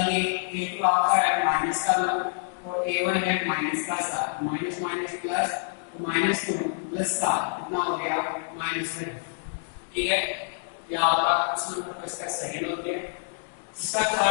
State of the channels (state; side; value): silent; right; digital silence